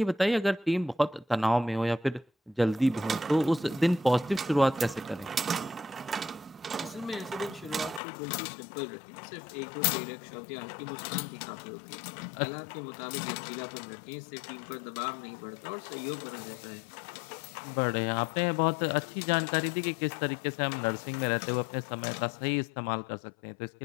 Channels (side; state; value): right; drops out; at 8.0 s